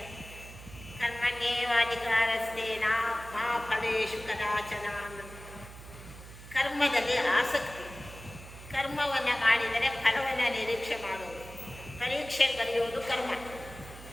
ಕರ್ಮಣ್ಯೇವಾಧಿಕಾರಸ್ಥೇನ ಮಾ ಫಲೇಶು ಕದಾಚನ. ಕರ್ಮದಲ್ಲಿ ಆಸಕ್ತಿ. ಕರ್ಮವನ್ನು ಮಾಡಿದರೆ ಫಲವನ್ನು ನಿರೀಕ್ಷೆ ಮಾಡೋದು. ಪರೀಕ್ಷೆ ಬರೆಯೋದು ಕರ್ಮ.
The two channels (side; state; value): right; noise; hum, 16 dB below the sound